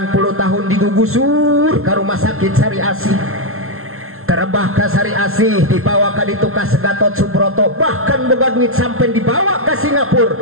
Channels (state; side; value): late; left; 0.62 ms